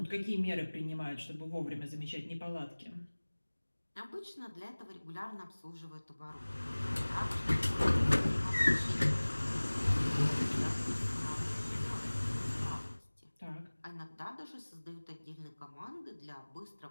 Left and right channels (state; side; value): inverted; both; correlation -1.00